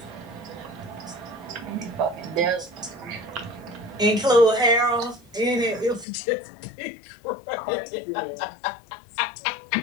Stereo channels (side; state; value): right; drops out; at 6.1 s